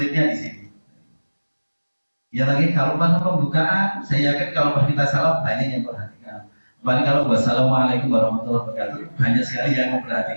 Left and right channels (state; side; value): inverted; both; correlation -1.00